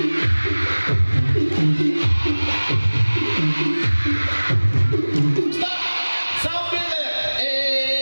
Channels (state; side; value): inverted; both; correlation -1.00